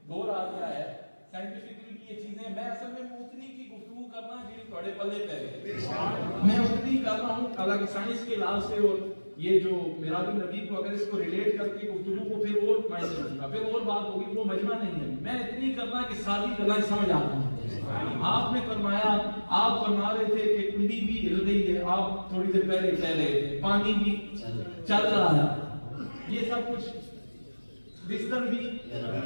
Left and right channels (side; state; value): both; inverted; correlation -1.00